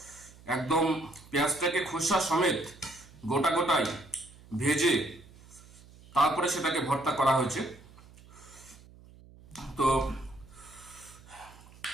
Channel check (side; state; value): right; noise; hum, 22 dB below the sound